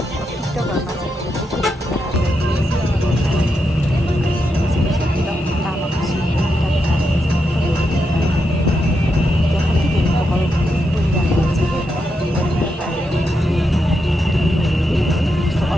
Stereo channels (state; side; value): normal; both; correlation 0.84